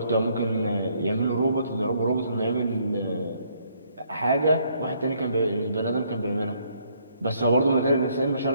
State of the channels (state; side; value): inverted; both; correlation -0.68